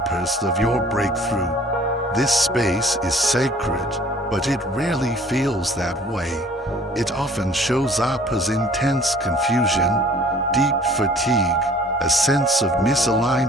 of your breakthrough. This space is sacred, but it rarely feels that way. It often shows up as intense confusion, deep fatigue, a sense of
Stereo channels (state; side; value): normal; both; correlation 0.52